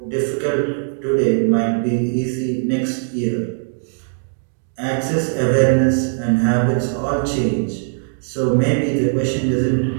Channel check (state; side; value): silent; left; 66 dB below the other